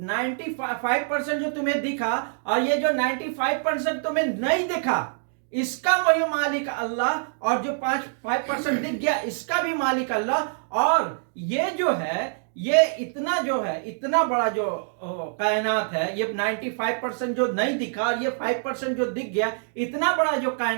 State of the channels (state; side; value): silent; left; digital silence